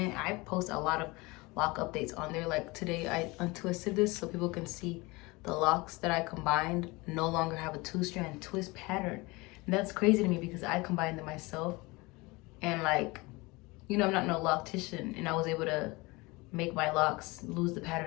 I post a lot of lock updates on there. Like today I untwisted this so people can see the locks that I combined no longer have a 2-strand twist pattern. And that's crazy to me because I combined them myself, and like, you know, I'm not no loctitian, and I was able to make my locks lose the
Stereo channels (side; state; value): right; quieter; 24.0 dB